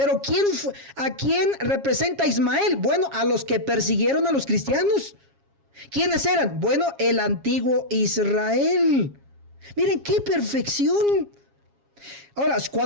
¿a quién representa Ismael? Bueno, a los que persiguieron a los cristianos. ¿Quiénes eran? Bueno, el antiguo Israel. Miren qué perfección. Ahora,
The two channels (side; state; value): left; late; 7.3 ms